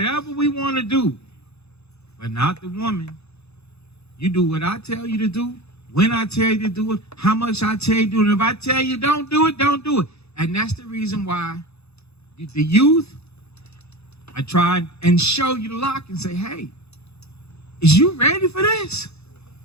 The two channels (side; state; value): right; late; 0.79 ms